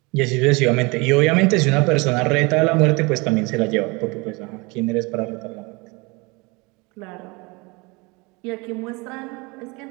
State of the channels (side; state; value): left; quieter; 26.8 dB